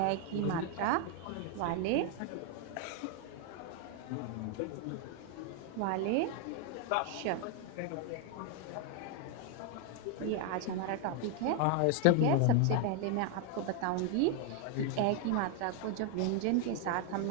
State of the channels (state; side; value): different; both; correlation 0.01